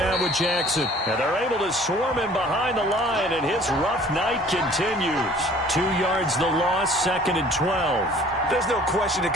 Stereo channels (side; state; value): both; normal; correlation 0.52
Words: with Jackson. And they're able to swarm him behind the line, and his rough night continues. 2 yards the loss, 2nd and 12. There's no question that